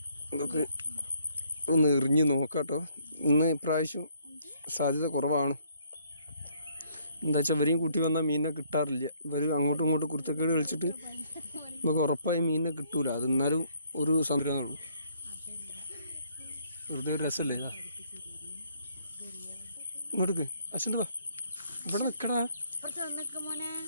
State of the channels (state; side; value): inverted; both; correlation -0.66